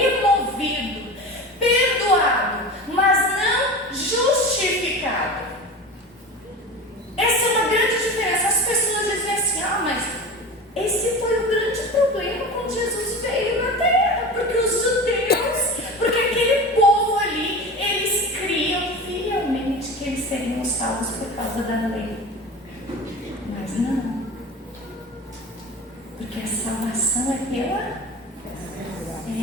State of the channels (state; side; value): normal; both; correlation 0.31